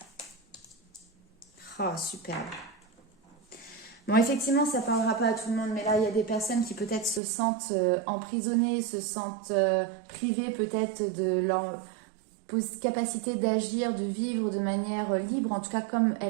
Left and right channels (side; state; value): left; drops out; at 7.2 s